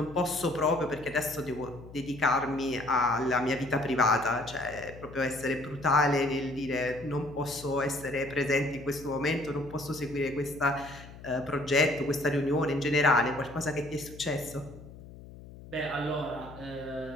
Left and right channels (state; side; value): noise; left; hum, 17 dB below the sound